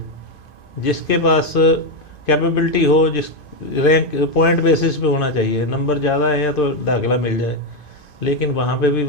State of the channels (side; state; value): right; late; 2.5 ms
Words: जिसके पास कैपेबिलिटी हो, जिस रैंक पॉइंट बेसिस पे होना चाहिए, नंबर ज़्यादा है तो दाखिला मिल जाए। लेकिन वहाँ पे भी